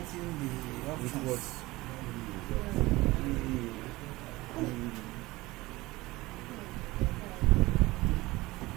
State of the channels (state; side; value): quieter; left; 20.1 dB